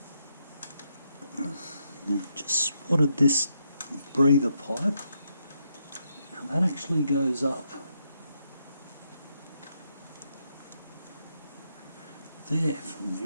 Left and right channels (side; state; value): both; inverted; correlation -0.79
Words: Now I've just spotted this breather pipe. Now that actually goes up there from